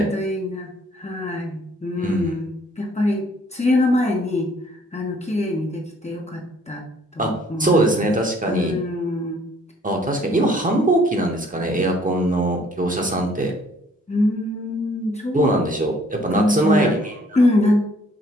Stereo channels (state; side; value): normal; both; correlation 0.61